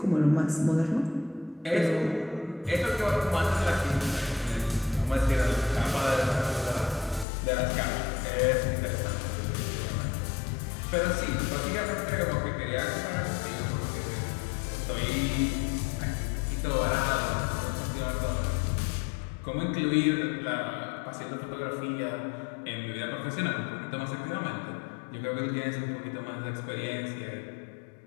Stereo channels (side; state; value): right; drops out; at 7.2 s